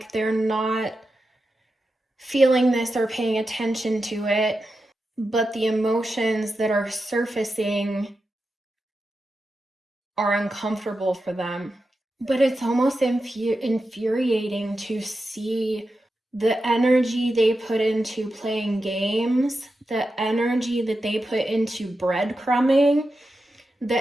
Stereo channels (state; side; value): normal; both; correlation 0.90